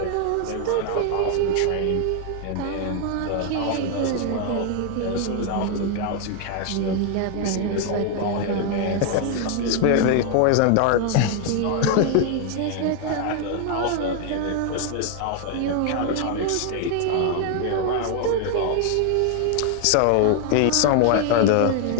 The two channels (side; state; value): both; different; correlation 0.00